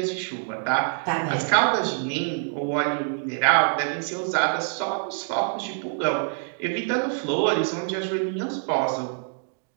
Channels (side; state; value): left; silent; 61 dB below the other